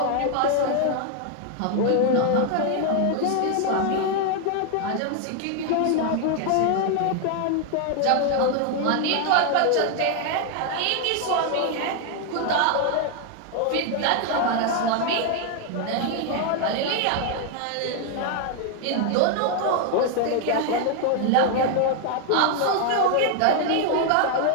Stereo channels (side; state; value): both; different; correlation 0.00